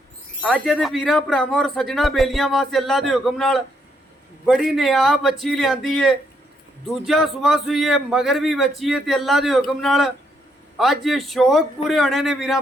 अज दे वीरां भरावां और सज्जना बेलियां वास्ते अल्लाह दे हुक्म नाल बड़ी नियाब बच्ची लियांदी है। दूजा सुबह सुई है, मगर भी बच्ची है ते अल्लाह दे हुक्म नाल अज शौक पूरे होने ने वीरां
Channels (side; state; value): both; normal; correlation 0.75